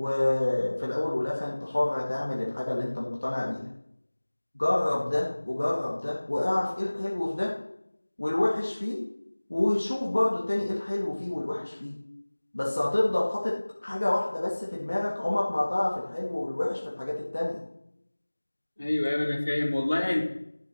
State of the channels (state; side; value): inverted; both; correlation -1.00